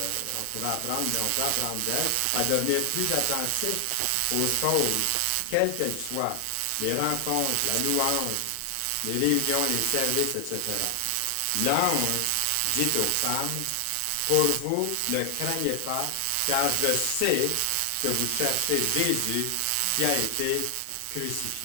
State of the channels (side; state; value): both; different; correlation 0.00